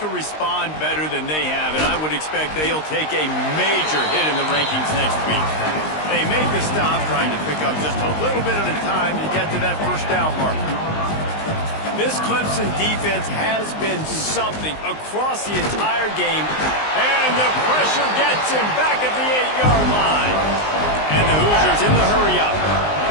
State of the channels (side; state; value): right; late; 19 ms